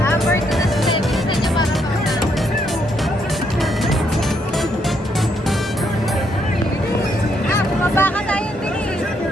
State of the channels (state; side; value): normal; both; correlation 0.75